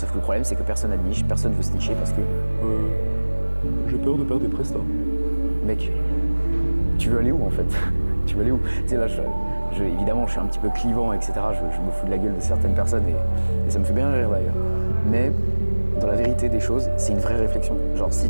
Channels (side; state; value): both; inverted; correlation -1.00